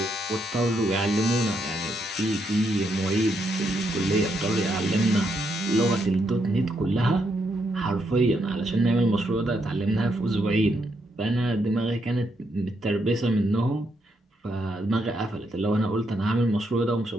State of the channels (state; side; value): normal; both; correlation 0.78